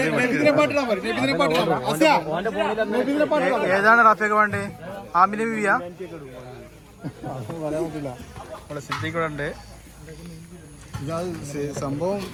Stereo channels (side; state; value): both; identical; correlation 1.00